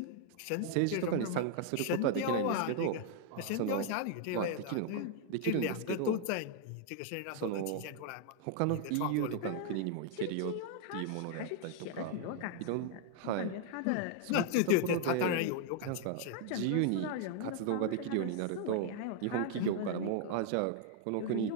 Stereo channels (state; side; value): different; both; correlation 0.00